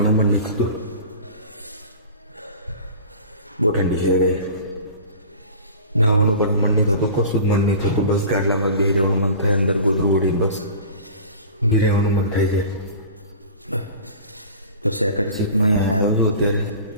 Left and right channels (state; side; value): inverted; both; correlation -0.38